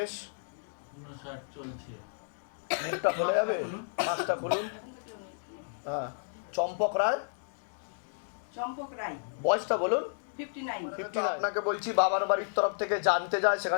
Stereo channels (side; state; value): right; silent; digital silence